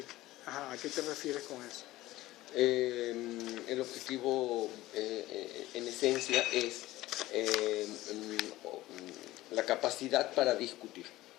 Ajá, ¿a qué te refieres con eso? El objetivo en esencia es la capacidad para discutir.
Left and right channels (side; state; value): right; quieter; 17.0 dB